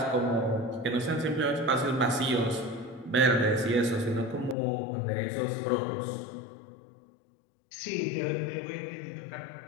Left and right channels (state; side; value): drops out; right; at 4.5 s